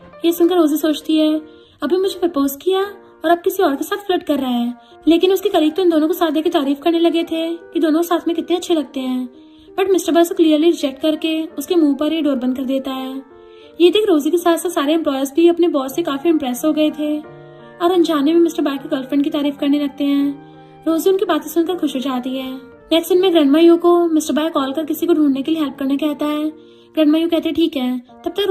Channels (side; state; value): both; identical; correlation 1.00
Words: ये सुनकर रोजी सोचती है अभी मुझे प्रपोज किया और अब किसी और के साथ फ्लर्ट कर रहा है, लेकिन उसके कलीग तो इन दोनों को साथ देकर तारीफ करने लगे थे कि दोनों साथ में कितने अच्छे लगते हैं। बट मिस्टर बाय को क्लियरली रिजेक्ट करके उसके मुंह पर ही डोर बंद कर देता है। ये देख रोजी के साथ साथ सारे एम्प्लॉयज भी अपने बॉस से काफी इम्प्रेस हो गए थे और अनजाने में मिस्टर बाय की गर्लफ्रेंड की तारीफ करने लगते हैं। रोजी उनकी बातें सुनकर खुश हो जाती है। नेक्स्ट दिन में ग्रैंडमा यू को मिस्टर बाय कॉल कर किसी को ढूंढने के लिए हेल्प करने कहता है। ग्रैंडमा यू कहते ठीक है। तब तक